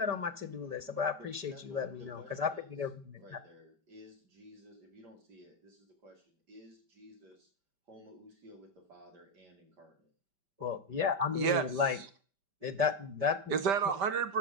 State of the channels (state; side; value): late; left; 5.1 ms